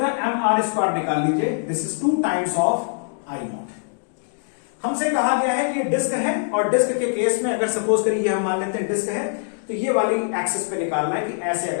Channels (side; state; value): right; silent; digital silence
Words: mr स्क्वायर निकाल लीजिए, this is 2 times of I not. हमसे कहा गया है कि ये डिस्क है और डिस्क के केस में अगर सपोज करिए हम मान लेते हैं डिस्क है, तो ये वाली एक्सिस पे निकालना है कि ऐसे